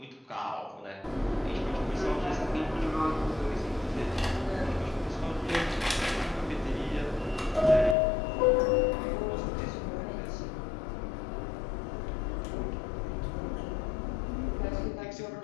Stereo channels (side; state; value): right; drops out; at 8.0 s